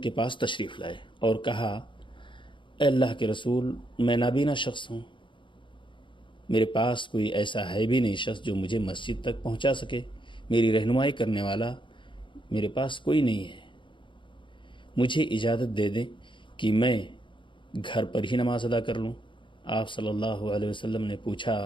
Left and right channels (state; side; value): late; right; 0.24 ms